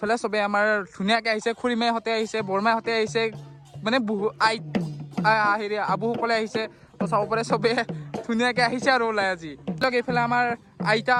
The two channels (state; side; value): identical; both; correlation 1.00